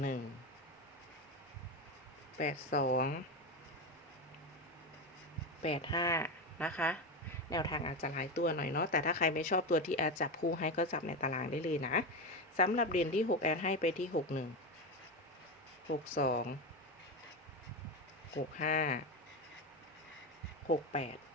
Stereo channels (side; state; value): both; normal; correlation 0.16